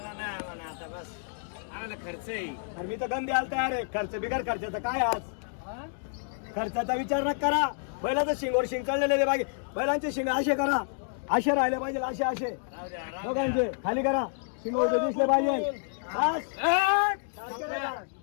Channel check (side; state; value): right; silent; digital silence